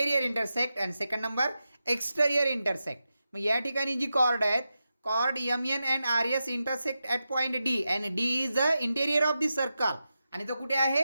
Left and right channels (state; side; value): inverted; both; correlation -0.90